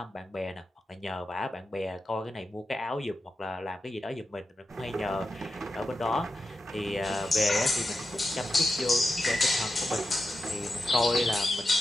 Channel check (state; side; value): normal; both; correlation 0.90